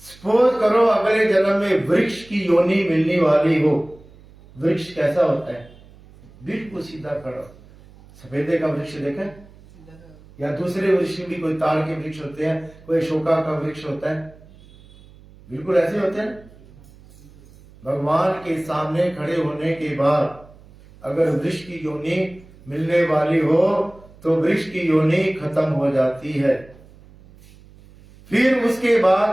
सपोज करो अगले जन्म में वृक्ष की योनि मिलने वाली हो। वृक्ष कैसा होता है? बिल्कुल सीधा खड़ा। सफेदे का वृक्ष देखा है? या दूसरे वृक्ष भी, कोई ताड़ के वृक्ष होते हैं, कोई अशोका का वृक्ष होता है, बिल्कुल ऐसे होते हैं। भगवान के सामने खड़े होने के बाद अगर वृक्ष की योनि मिलने वाली हो तो वृक्ष की योनि खत्म हो जाती है। फिर उसके बाद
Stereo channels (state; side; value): noise; right; hum, 24 dB below the sound